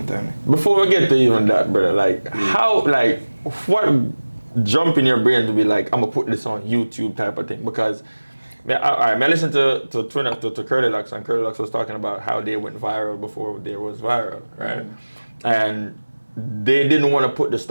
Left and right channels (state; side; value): inverted; both; correlation -1.00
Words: time. Before we get to even that, brother, like how, like what jump in your brain to be like, I'm gonna put this on YouTube type of thing? Because I listened to Curly Lux, and Curly Lux was talking about how they went viral before they was viral, right? And they didn't want to put the